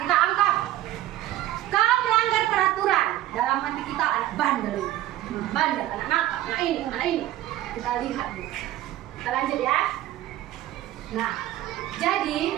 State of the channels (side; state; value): left; quieter; 14.2 dB